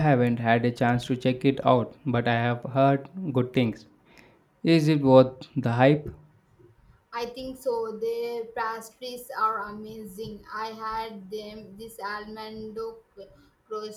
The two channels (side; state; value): both; identical; correlation 1.00